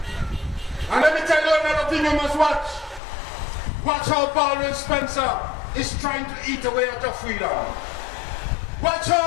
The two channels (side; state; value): right; drops out; at 3.0 s